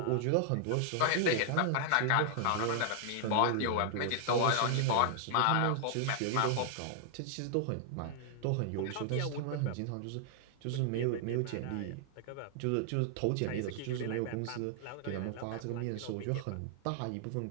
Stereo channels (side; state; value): both; different; correlation 0.00